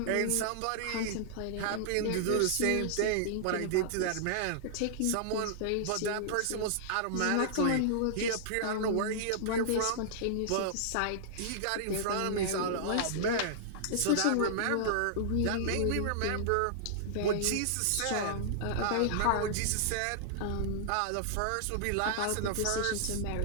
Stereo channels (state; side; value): different; both; correlation -0.01